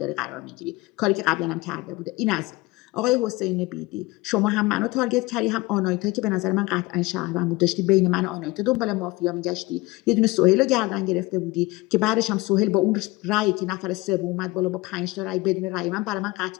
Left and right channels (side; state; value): right; quieter; 21.5 dB